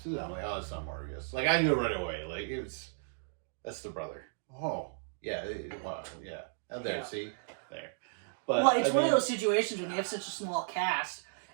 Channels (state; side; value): silent; left; digital silence